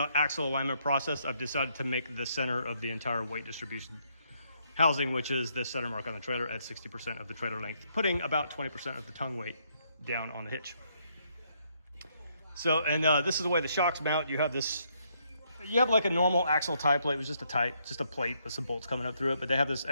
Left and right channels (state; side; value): inverted; both; correlation -0.73